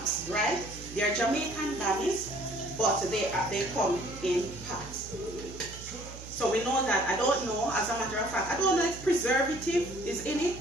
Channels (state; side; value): noise; right; hum, 14 dB below the sound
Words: right? They are Jamaican bummies, but they come in packs. So we know that, I don't know, as a matter of fact, I don't know if preservative is in it.